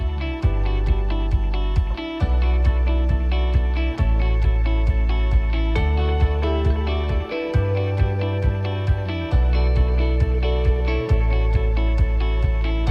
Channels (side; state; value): both; identical; correlation 1.00